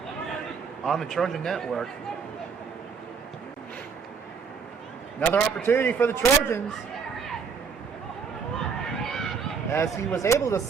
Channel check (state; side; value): quieter; left; 5.9 dB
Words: on the Trojan Network. Another opportunity for the Trojans, as he was able to